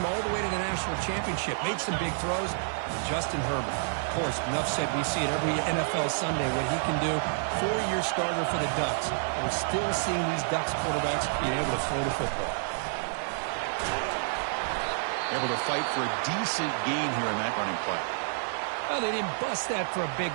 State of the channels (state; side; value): silent; left; 57 dB below the other